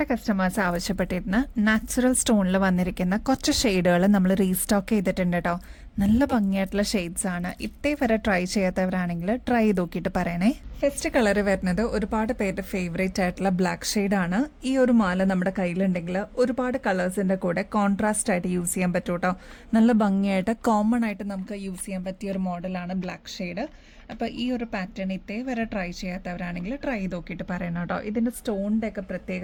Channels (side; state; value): both; identical; correlation 1.00